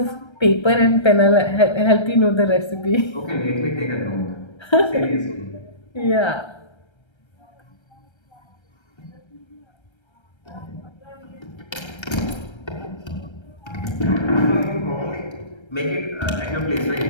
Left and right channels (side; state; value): right; late; 1.3 ms